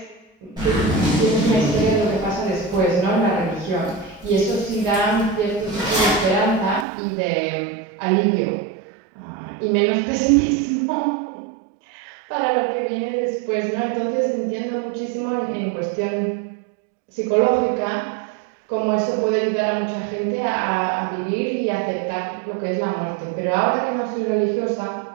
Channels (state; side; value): drops out; left; at 6.9 s